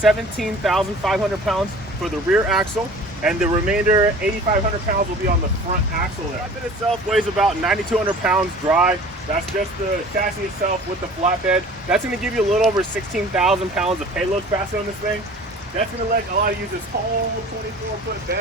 pounds for the rear axle, and the remainder, 8,500 pounds, will be on the front axle there. The flatbed itself weighs about 9,200 pounds dry. That's just the chassis itself with the flatbed. That's going to give you a little over 16,000 pounds of payload capacity on this thing. That's going to let allow you to use this whole 24-foot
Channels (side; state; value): both; normal; correlation 0.44